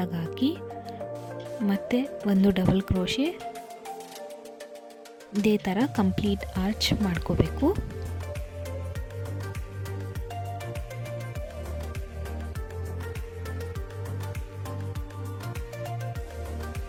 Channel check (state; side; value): identical; both; correlation 1.00